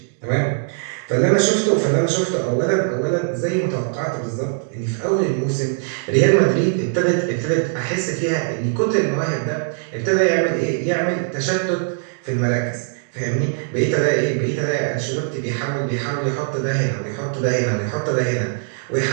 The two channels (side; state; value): left; silent; digital silence